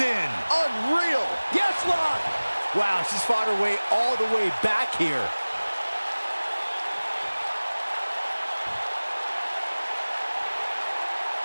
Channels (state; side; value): inverted; both; correlation -1.00